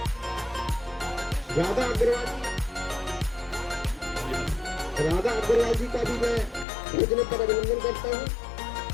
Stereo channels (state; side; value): drops out; right; at 6.7 s